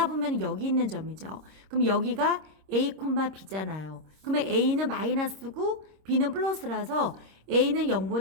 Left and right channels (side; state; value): left; late; 26 ms